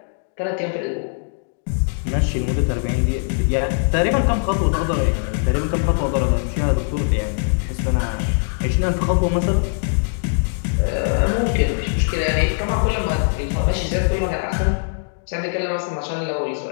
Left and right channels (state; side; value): silent; right; digital silence